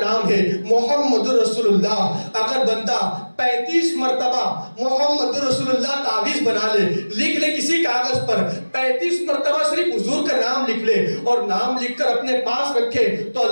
ہے محمد رسول اللہ، اگر بندہ 35 مرتبہ محمد رسول اللہ تعویذ بنا لے، لکھ لے کسی کاغذ پر، 35 مرتبہ صرف حضور کا نام لکھ لے اور نام لکھ کر اپنے پاس رکھے تو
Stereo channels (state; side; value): inverted; both; correlation -1.00